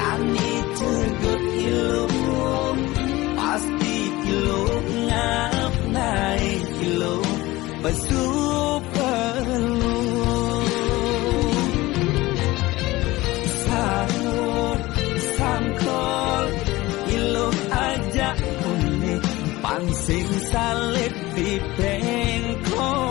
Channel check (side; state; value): right; quieter; 19.3 dB